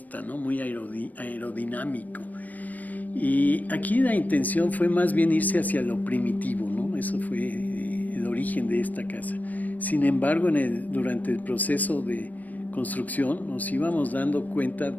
¿no? Muy aerodinámico. Y aquí la intención fue más bien irse hacia lo primitivo, ¿no? Eso fue el origen de esta casa. Sin embargo, durante el proceso de construcción nos íbamos dando cuenta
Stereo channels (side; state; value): right; late; 0.080 ms